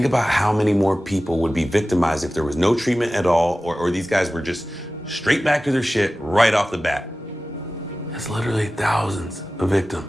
about how many more people would be victimized if there was no treatment at all, or these guys were just straight back to their shit right off the bat. That's literally thousands of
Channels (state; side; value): normal; both; correlation 0.96